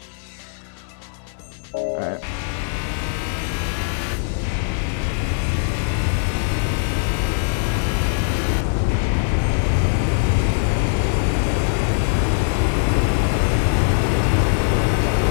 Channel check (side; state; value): right; silent; digital silence